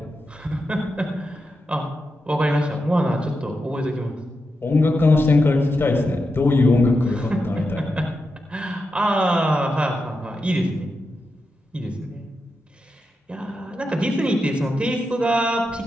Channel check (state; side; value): normal; both; correlation 0.87